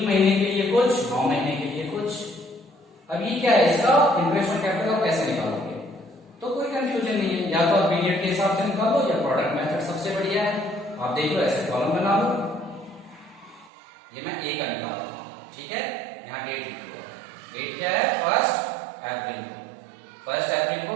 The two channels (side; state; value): left; drops out; at 13.7 s